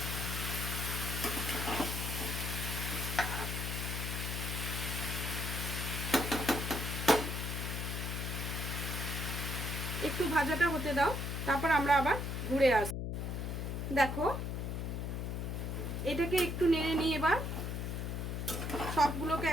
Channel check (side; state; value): left; noise; hum, 2 dB below the sound